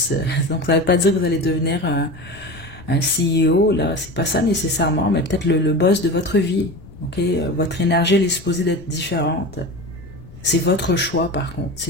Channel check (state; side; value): noise; left; rumble, 19 dB below the sound